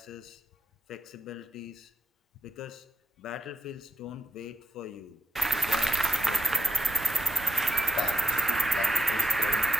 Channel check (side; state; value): both; normal; correlation 0.87